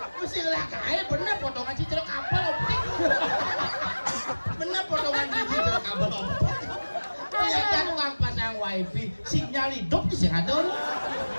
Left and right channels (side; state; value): both; inverted; correlation -1.00